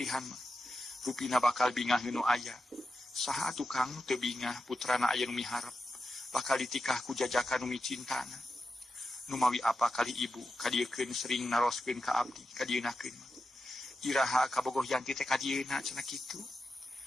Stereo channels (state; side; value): normal; both; correlation 0.89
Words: mah. Rupina bakal bingah nu aya. Saha atuh Kang teu bingah putrana aya nu miharep bakal ditikah ku jajakan nu micintana. Nu mawi apa kali ibu kadiekeun sering naroskeun ka abdi kadienakeun mah. Iraha kabogoh Yanti teh kadieuna cenah kitu.